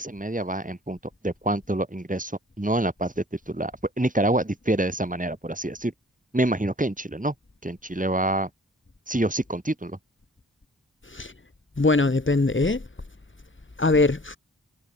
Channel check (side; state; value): both; normal; correlation 0.49